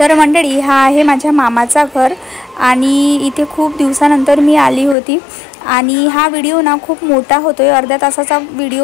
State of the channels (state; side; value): drops out; right; at 5.0 s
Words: मंडळी, हा आहे माझ्या मामाचा घर आणि इथे खूप दिवसानंतर मी आली होती. आणि हा व्हिडिओ ना खूप मोठा होतोय, अर्ध्या तासाचा